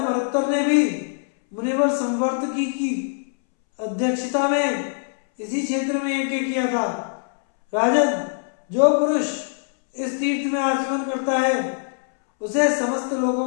ने भी मुनिवर संवर्तकी की अध्यक्षता में इसी क्षेत्र में यज्ञ किया था। राजन, जो पुरुष इस तीर्थ में आचमन करता है उसे समस्त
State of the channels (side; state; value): right; silent; 63 dB below the other